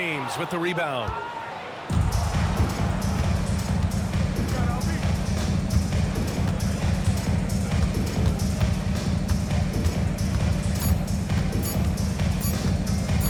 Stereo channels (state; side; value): identical; both; correlation 1.00